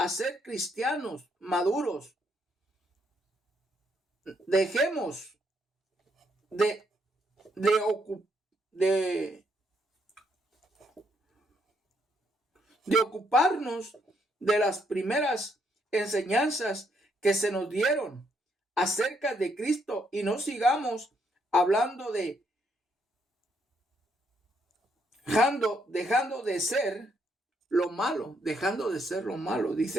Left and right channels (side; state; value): both; normal; correlation 0.74